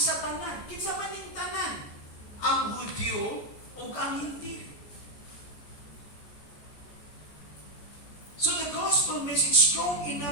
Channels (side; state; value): right; late; 14 ms